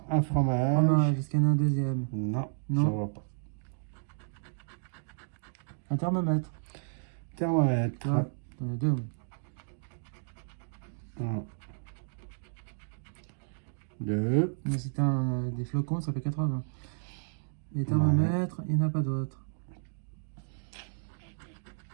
un fromage. Fromage, est-ce qu'il y en a un deuxième? Non, Non. je vois pas. Un thermomètre. Thermomètre. Ouais, t'en as deux. Oui. 1, 2. Mais si t'as des flocons, ça fait 80. Les thermomètres, il n'y en a pas d'autres.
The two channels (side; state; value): left; silent; digital silence